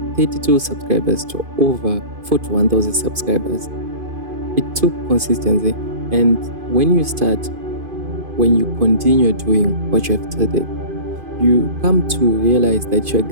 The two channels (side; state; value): left; late; 2.5 ms